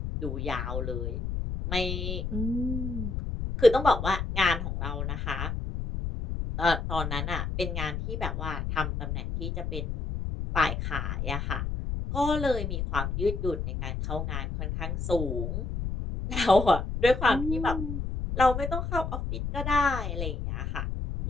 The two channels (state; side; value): noise; left; rumble, 3 dB below the sound